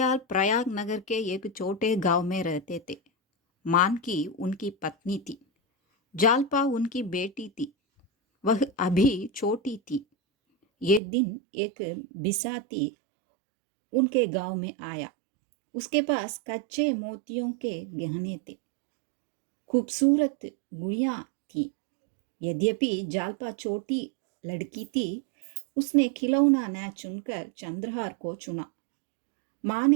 प्रयाग नगर के एक छोटे गांव में रहते थे। मानकी उनकी पत्नी थी। जालपा उनकी बेटी थी। वह अभी छोटी थी। एक दिन एक बिसाती उनके गांव में आया। उसके पास कच्चे मोतियों के गहने थे। खूबसूरत गुड़ियां थी। यद्यपि जालपा छोटी लड़की थी, उसने खिलौना न चुनकर चंद्रहार को चुना। माँ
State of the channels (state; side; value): drops out; left; at 11.0 s